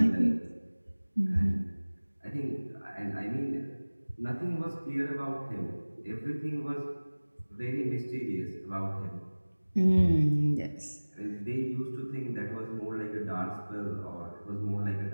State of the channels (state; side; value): inverted; both; correlation -1.00